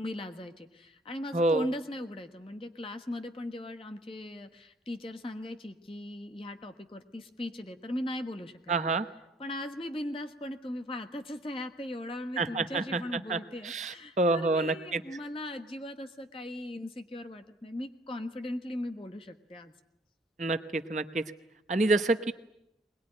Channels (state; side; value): normal; both; correlation 0.59